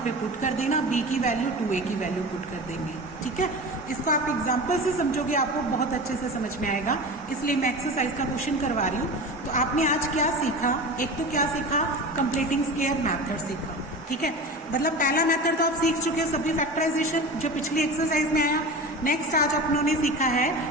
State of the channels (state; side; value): normal; both; correlation 0.31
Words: पुट कर देना, b की वैल्यू 2a की वैल्यू पुट कर देंगे, ठीक है। इसको आप एग्जाम्पल से समझोगे आपको बहुत अच्छे से समझ में आएगा, इसलिए मैं एक्सरसाइज का क्वेश्चन करवा रही हूँ। तो आपने आज क्या सीखा, एक तो क्या सीखा, कंप्लीटिंग स्क्वायर मेथड सीखा, ठीक है। मतलब पहला मेथड तो आप सीख चुके हो, सभी फैक्टराइजेशन जो पिछली एक्सरसाइज में आया। नेक्स्ट आज अपनों ने सीखा है